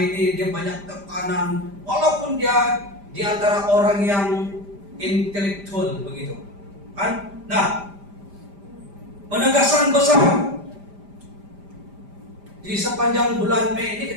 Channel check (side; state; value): left; late; 5.0 ms